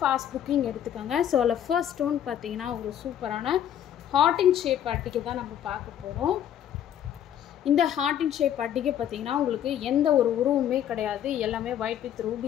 fast booking எடுத்துக்கங்க. சோ the first one பாத்தீங்கன்னா ஒரு சூப்பரான heart in shape அட்டிகை தான் நம்ம பார்க்க போறோம். இந்த heart in shape அட்டிகை பாத்தீங்கன்னா உங்களுக்கு எந்த ஒரு உருவமே கிடையாது. எல்லாமே white with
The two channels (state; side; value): quieter; right; 10.3 dB